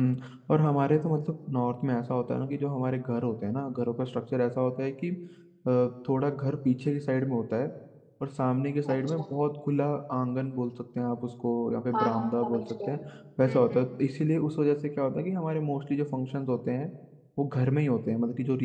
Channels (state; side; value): identical; both; correlation 1.00